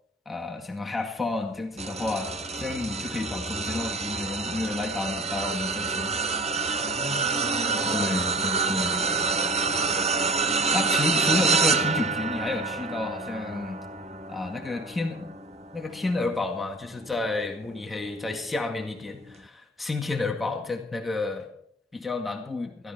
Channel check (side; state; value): both; normal; correlation 0.43